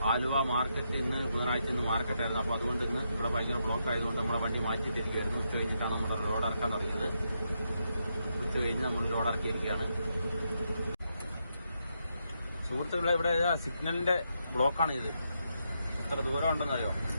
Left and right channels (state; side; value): inverted; both; correlation -0.81